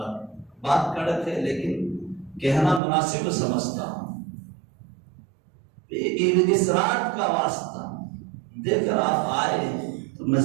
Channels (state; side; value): drops out; left; at 2.8 s